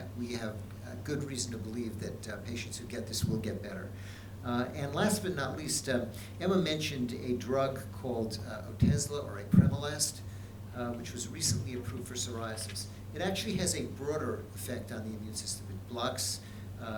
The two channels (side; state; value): both; identical; correlation 1.00